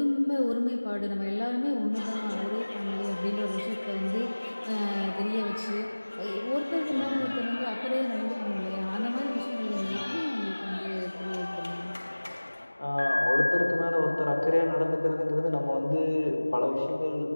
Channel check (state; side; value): inverted; both; correlation -1.00